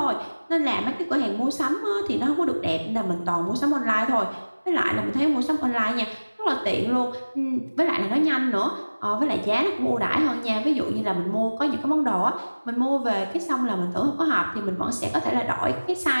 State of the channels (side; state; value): both; inverted; correlation -1.00